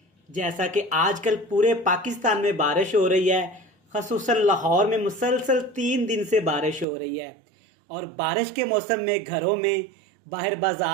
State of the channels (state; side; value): drops out; left; at 6.9 s